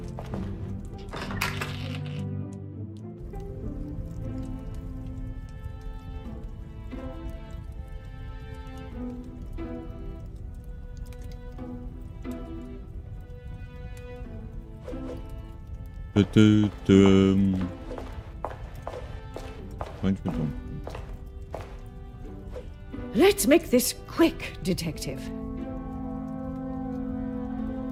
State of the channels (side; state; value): both; identical; correlation 1.00